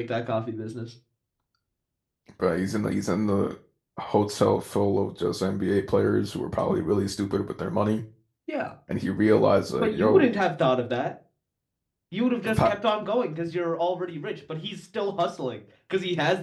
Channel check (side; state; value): both; identical; correlation 1.00